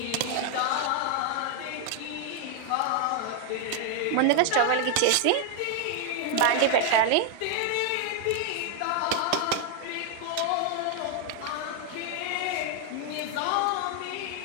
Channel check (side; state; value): both; different; correlation 0.00